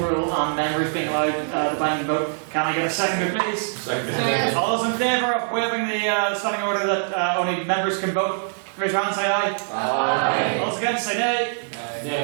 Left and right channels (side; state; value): left; silent; digital silence